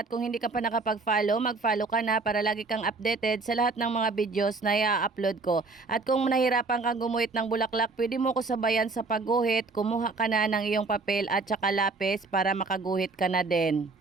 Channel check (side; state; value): left; quieter; 3.9 dB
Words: kung hindi ka pa nakapag-follow, mag-follow ka na para lagi kang updated sa lahat ng mga videos na i-upload ko. At kung nahirapan kang gumuhit ng bulaklak, pwede mo ko sabayan sa pagguhit. Kumuha ka na ng iyong papel at saka lapis para makaguhit ka na din.